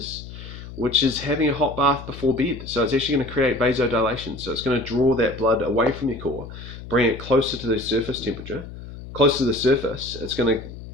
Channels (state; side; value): noise; left; hum, 13 dB below the sound